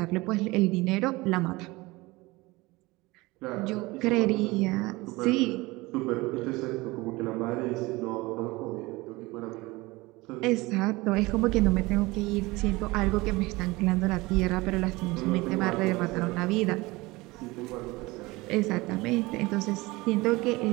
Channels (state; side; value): quieter; left; 21.9 dB